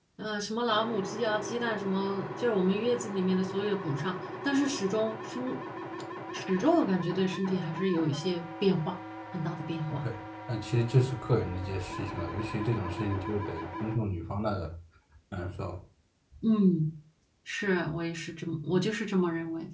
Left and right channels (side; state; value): both; identical; correlation 1.00